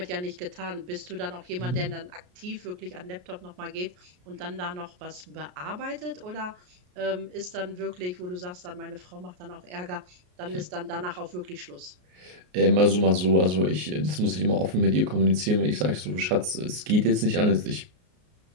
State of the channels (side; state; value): left; late; 33 ms